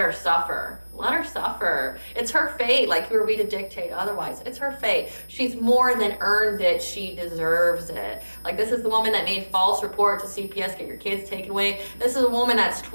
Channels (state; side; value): inverted; both; correlation -1.00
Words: suffer. Let her suffer. It's her fate. Like, who are we to dictate otherwise? It's her fate. She's more than earned it. She deserves it. Like, this is the woman that made false report to CPS, get your kids taken away. This is a woman that's